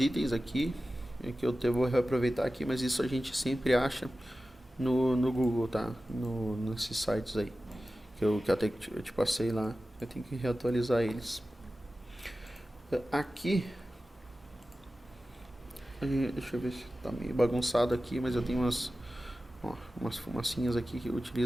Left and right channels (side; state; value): both; normal; correlation 0.95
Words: aqui que eu vou reaproveitar aqui, mas isso a gente sempre acha no Google, tá? Nesses sites aí que eu até te passei lá. Eu tenho que reatualizar eles. Aqui, deixa eu ver se tá meio bagunçado aqui, mas eu tenho umas fumacinhas aqui que eu